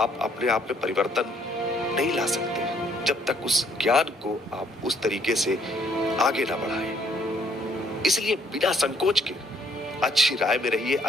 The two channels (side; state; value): both; normal; correlation 0.65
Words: अपने आप में परिवर्तन नहीं ला सकते जब तक उस ज्ञान को आप उस तरीके से आगे ना बढ़ाएं। इसलिए बिना संकोच के अच्छी राय में रहिए,